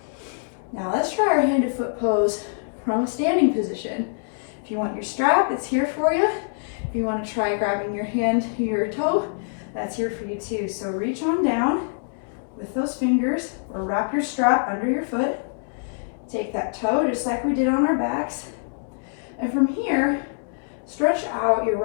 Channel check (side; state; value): right; silent; 62 dB below the other